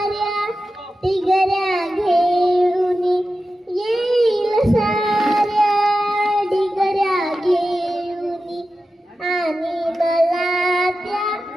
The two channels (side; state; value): both; normal; correlation 0.92